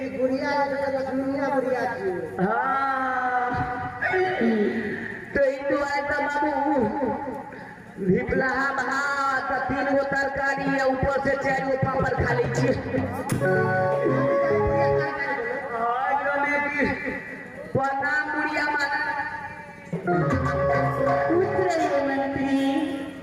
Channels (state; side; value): identical; both; correlation 1.00